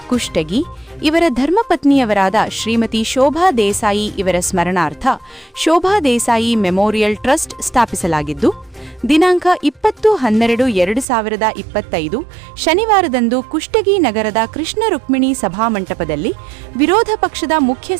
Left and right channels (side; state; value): left; drops out; at 11.1 s